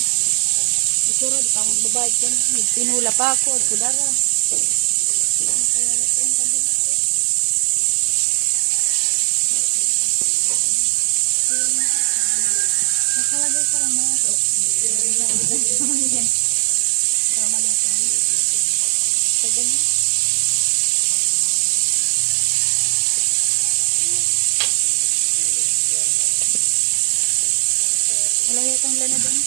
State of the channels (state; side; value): silent; left; 65 dB below the other